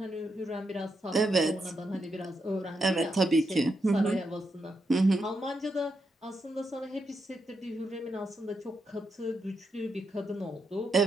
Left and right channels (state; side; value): normal; both; correlation 0.83